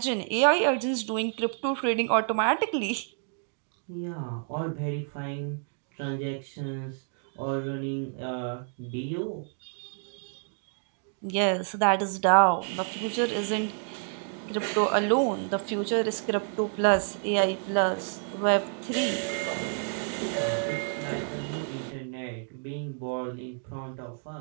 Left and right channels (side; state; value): left; silent; 58 dB below the other